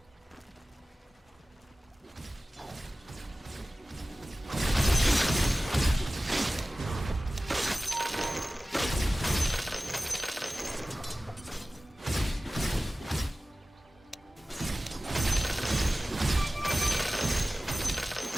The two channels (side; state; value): both; normal; correlation 0.97